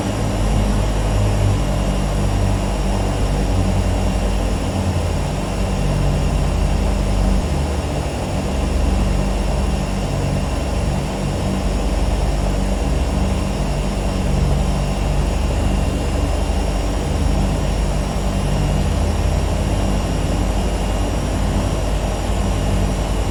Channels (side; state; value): both; identical; correlation 1.00